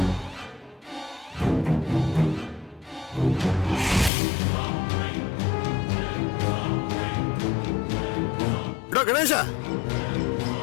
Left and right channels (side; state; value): right; drops out; at 4.1 s